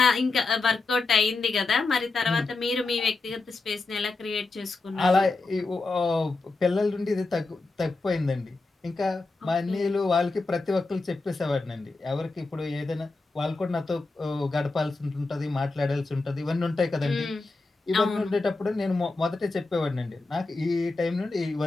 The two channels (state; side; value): quieter; right; 3.5 dB